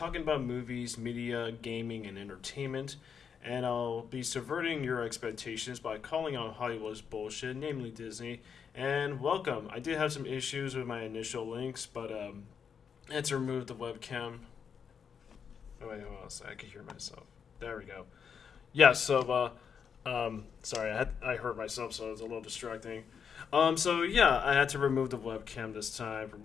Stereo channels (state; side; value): quieter; right; 6.9 dB